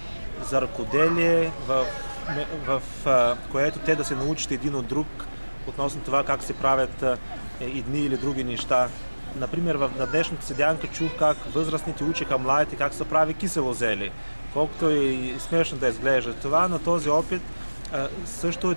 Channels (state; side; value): inverted; both; correlation -1.00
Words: за ръкоделие, в което те да се научат един от друг относно това как се правят едни или други неща. Например, на днешната седянка чух как възрастните учиха младите как се прави кисело зеле. Колкото и смешно да изглежда това, но този опит също е